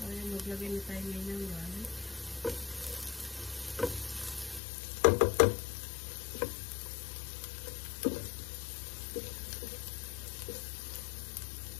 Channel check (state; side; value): drops out; right; at 4.6 s